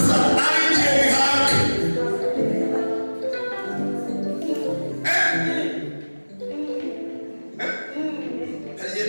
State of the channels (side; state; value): both; inverted; correlation -1.00